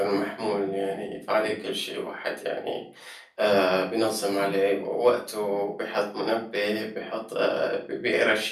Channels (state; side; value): identical; both; correlation 1.00